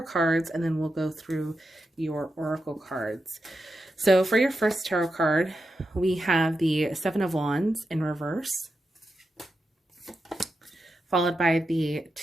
cards, and then we'll go through your oracle cards. So for your first tarot card, we have the 7 of Wands in reverse, followed by the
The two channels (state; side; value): normal; both; correlation 0.88